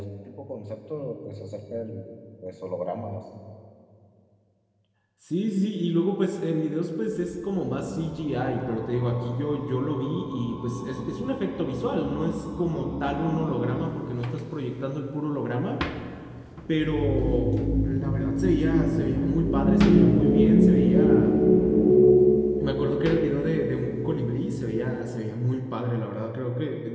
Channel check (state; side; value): identical; both; correlation 1.00